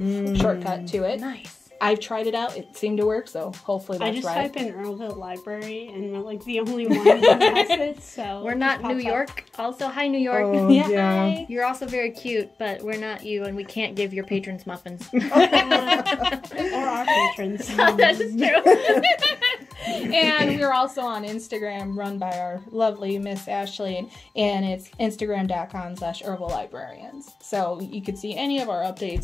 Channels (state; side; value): quieter; right; 3.5 dB